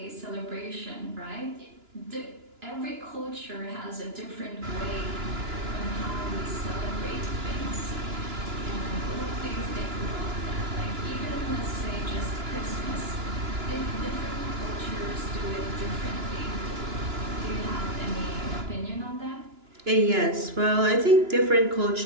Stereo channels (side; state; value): left; late; 2.9 ms